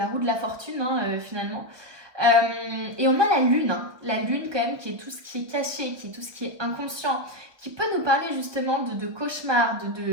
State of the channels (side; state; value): left; late; 1.2 ms